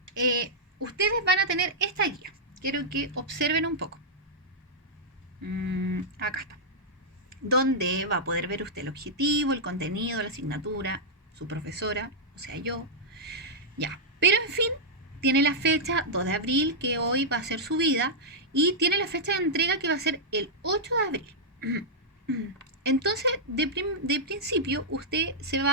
ustedes van a tener esta guía. Quiero que observen un poco. Acá está. Donde va a poder ver usted el objetivo, el contenido, la asignatura, su profesora, o sea, yo. Ya. Pero en fin, tiene la fecha 2 de abril, que hoy va a ser subida, y tiene la fecha de entrega que va a ser el 8 de abril. Entonces, de principio, usted se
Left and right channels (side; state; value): both; normal; correlation -0.08